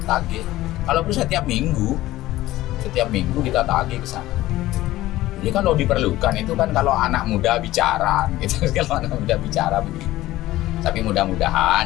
tagih. Kalau perlu setiap minggu kita tagih ke sana. Jadi kalau diperlukan itu kan kalau anak muda bicara, gitu. Kalau anak muda bicara begitu. Tapi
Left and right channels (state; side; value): quieter; right; 16.2 dB